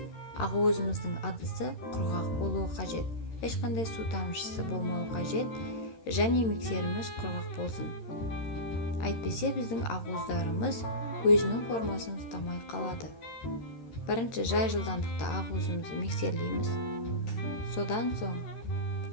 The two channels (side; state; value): right; late; 13 ms